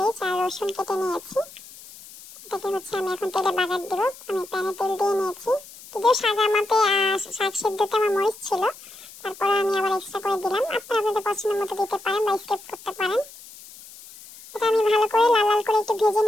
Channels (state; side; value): noise; left; hiss, 18 dB below the sound